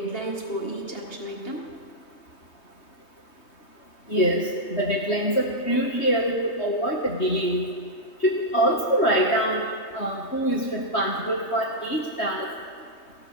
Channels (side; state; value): right; late; 3.2 ms